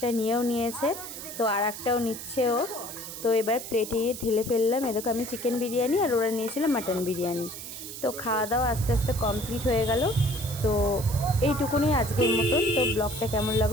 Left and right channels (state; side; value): noise; right; hiss, 10 dB below the sound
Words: নিয়েও নিয়েছে, তো আর একটাও নিচ্ছে ও। তো এবার প্লেটে ঢেলে ফেললাম। এ দেখো আমি চিকেন বিরিয়ানি আর ওরা নিয়েছিল মাটন বিরিয়ানি। তো খাওয়া দাওয়া আস্তে আস্তে কমপ্লিট হয়ে গেল। তো এইটুকুনি আজকের মতন। তো ব্লগটা কেমন